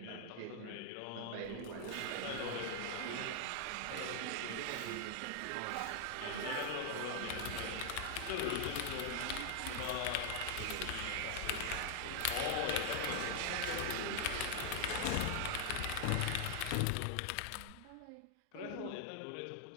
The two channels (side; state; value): both; different; correlation 0.00